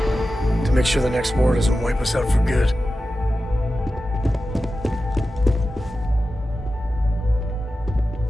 to make sure the next war doesn't wipe us out for good.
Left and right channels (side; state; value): both; normal; correlation 0.93